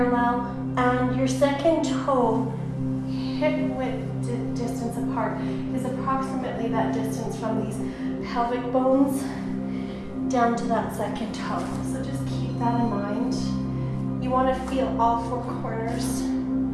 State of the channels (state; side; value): identical; both; correlation 1.00